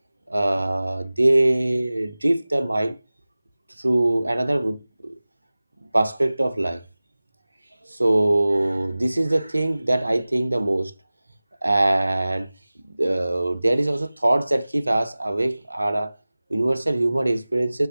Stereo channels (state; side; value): inverted; both; correlation -0.98